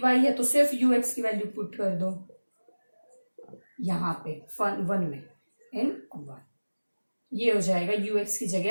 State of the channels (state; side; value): inverted; both; correlation -1.00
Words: है, तो सिर्फ यू एक्स की वैल्यू पुट कर दो यहाँ पे 1 में इन 1, ये हो जाएगा यू एक्स की